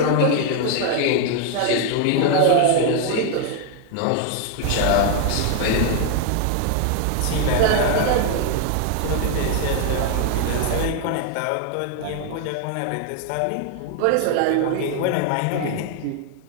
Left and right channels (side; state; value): both; different; correlation 0.00